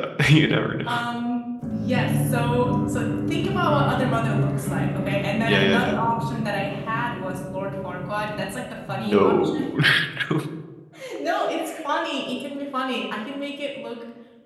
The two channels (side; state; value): both; identical; correlation 1.00